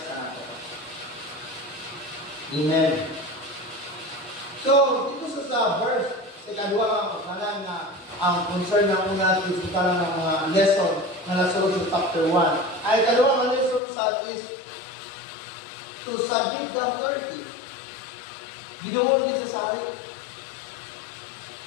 ka nato. Amen. So, dito sa verse, sa kadwa kanan na ang concern ng una is lang ng mga lesson na nasunod sa chapter 1. Ay kadwa ang lesson sa is to submit the authority. Binuhol din sa hari.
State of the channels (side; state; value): right; drops out; at 13.8 s